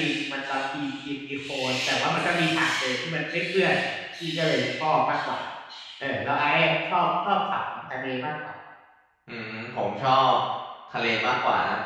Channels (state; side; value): identical; both; correlation 1.00